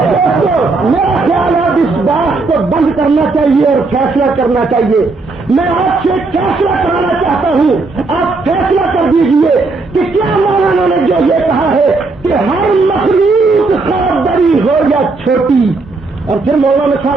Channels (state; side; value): quieter; left; 3.8 dB